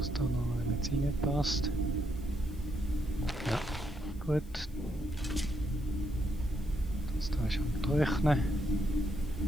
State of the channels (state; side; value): noise; left; hiss, 27 dB below the sound